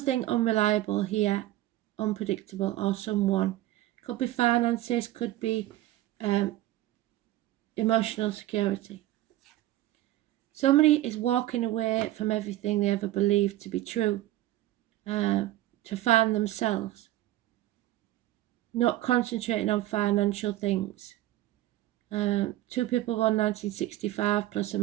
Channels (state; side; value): quieter; left; 15.2 dB